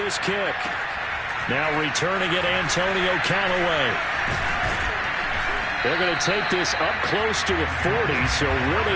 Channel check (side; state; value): both; identical; correlation 1.00